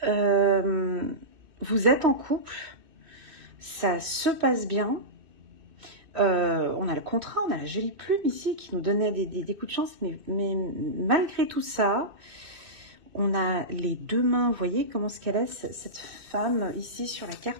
vous êtes en couple. Ça se passe bien. On a le contrat, on a la jolie plume ici qui nous donnait des coups de chance. Mais malgré tout ça... On a les deux mains, vous voyez comment ce qu'elle est, cette femme ici sur la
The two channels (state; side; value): late; left; 2.6 ms